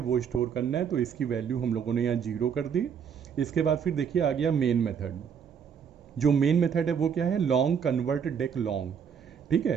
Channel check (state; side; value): quieter; left; 7.3 dB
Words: स्टोर करना है। तो इसकी वैल्यू हम लोगों ने यहाँ 0 कर दी। इसके बाद फिर देखिए आ गया मेन मेथड। जो मेन मेथड है वो क्या है, लॉन्ग कन्वर्ट डेक लॉन्ग। ठीक